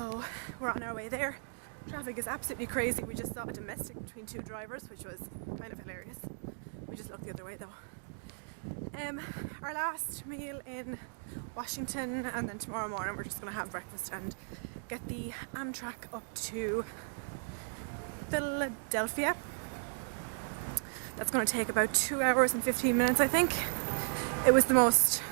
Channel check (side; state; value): left; silent; digital silence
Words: we're on our way there. Traffic is absolutely crazy. We just saw a domestic between two drivers, which was kind of hilarious. We just looked the other way though. Our last meal in Washington, and then tomorrow morning we're just going to have breakfast and get the Amtrak up to Philadelphia. That's going to take about 2 hours and 15 minutes, I think. It